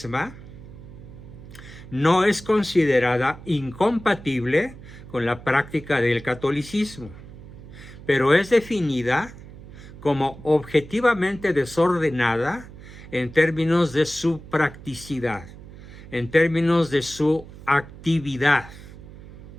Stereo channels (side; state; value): right; noise; hum, 16 dB below the sound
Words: no es considerada incompatible con la práctica del catolicismo, pero es definida como objetivamente desordenada en términos de su practicidad, en términos de su actividad